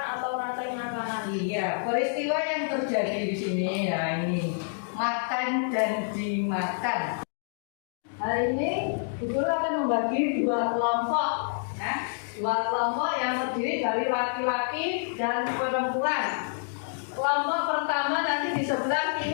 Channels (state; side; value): silent; right; digital silence